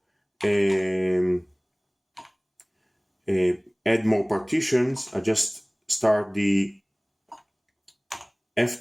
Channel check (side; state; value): both; identical; correlation 1.00